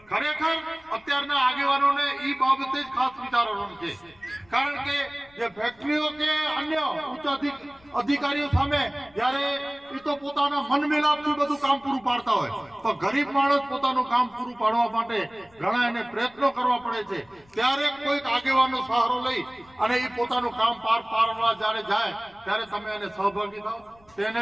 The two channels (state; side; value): noise; left; rumble, 30 dB below the sound